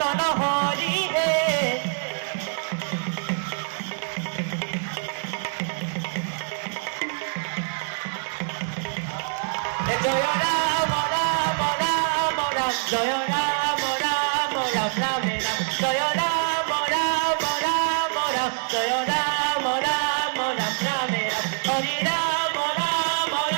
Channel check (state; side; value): silent; left; digital silence